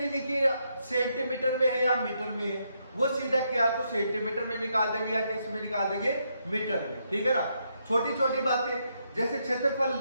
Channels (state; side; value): inverted; both; correlation -0.78